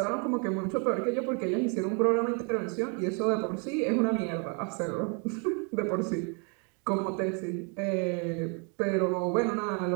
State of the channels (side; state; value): left; quieter; 36.9 dB